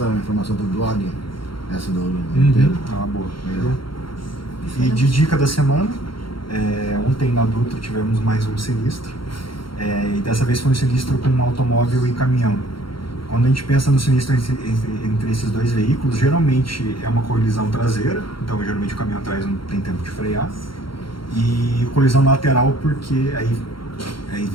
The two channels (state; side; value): late; right; 0.73 ms